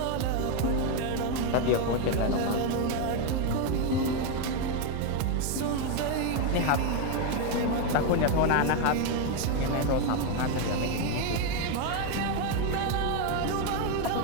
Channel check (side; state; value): both; different; correlation 0.02